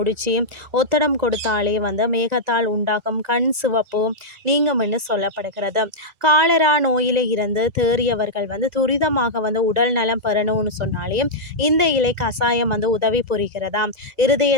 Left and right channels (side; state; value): left; late; 2.0 ms